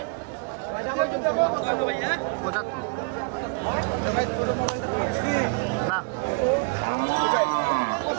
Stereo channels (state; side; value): quieter; left; 34.7 dB